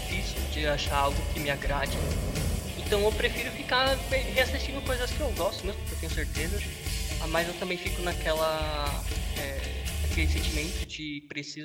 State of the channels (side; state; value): both; identical; correlation 1.00